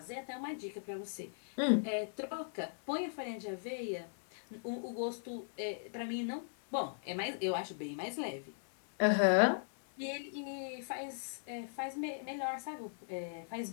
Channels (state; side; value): silent; right; 52 dB below the other